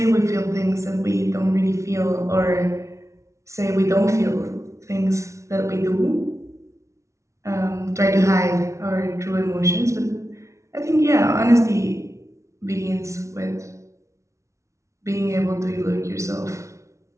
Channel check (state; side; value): late; left; 0.14 ms